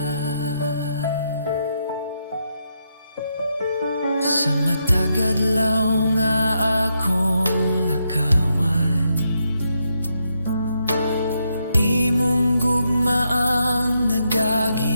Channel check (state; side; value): inverted; both; correlation -0.81